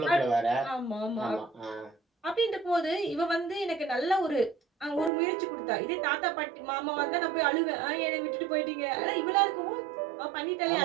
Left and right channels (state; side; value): drops out; left; at 5.1 s